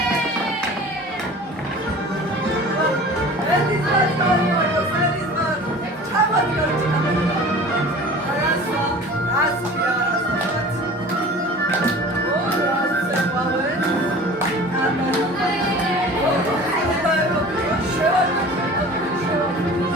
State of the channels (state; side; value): normal; both; correlation 0.42